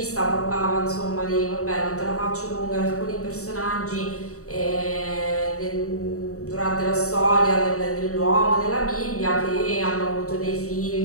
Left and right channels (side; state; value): right; late; 0.65 ms